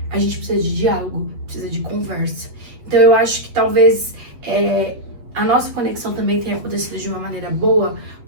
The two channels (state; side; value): late; left; 8.3 ms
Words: a gente precisa de diálogo, precisa de conversa. Então, eu acho que talvez a nossa conexão também tenha acontecido de uma maneira boa,